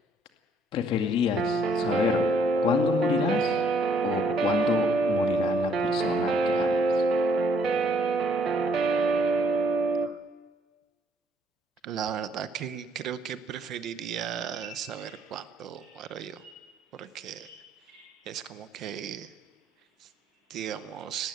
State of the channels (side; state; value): both; normal; correlation 0.66